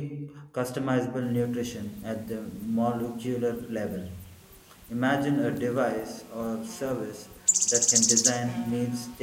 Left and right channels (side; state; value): both; identical; correlation 1.00